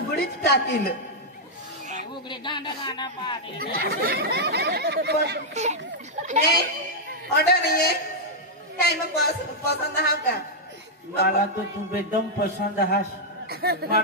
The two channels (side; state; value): both; normal; correlation -0.04